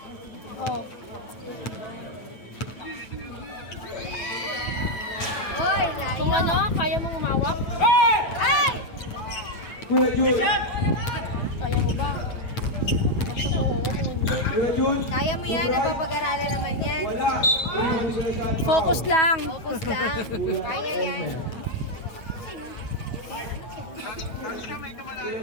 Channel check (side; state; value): right; late; 9.3 ms